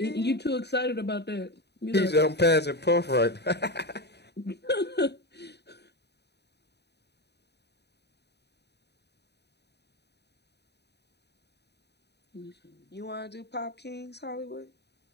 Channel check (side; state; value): right; late; 0.49 ms